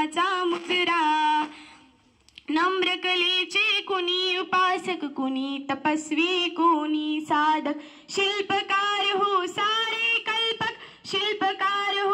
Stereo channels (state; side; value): identical; both; correlation 1.00